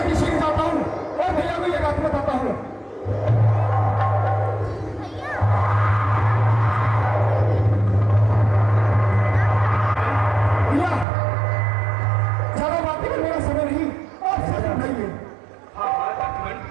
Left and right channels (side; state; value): left; drops out; at 11.1 s